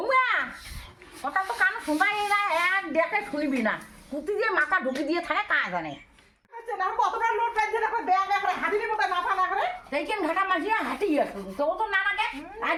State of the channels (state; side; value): identical; both; correlation 1.00